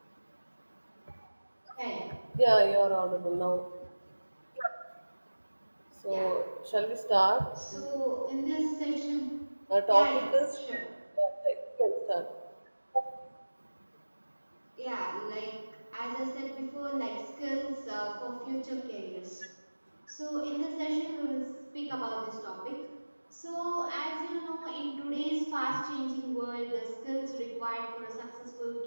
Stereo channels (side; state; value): both; inverted; correlation -1.00